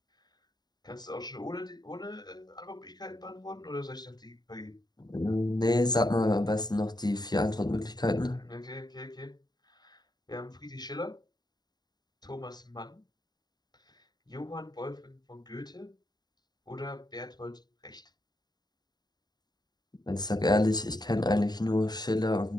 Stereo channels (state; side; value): late; right; 0.20 ms